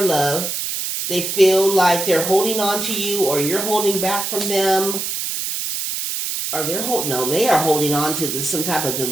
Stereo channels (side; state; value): right; noise; hiss, 3 dB below the sound